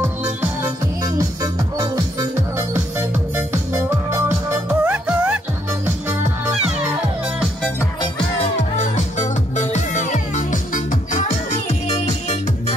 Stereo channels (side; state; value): both; normal; correlation 0.71